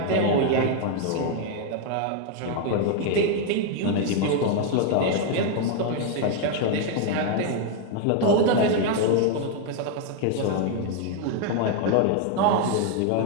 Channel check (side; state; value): both; different; correlation 0.00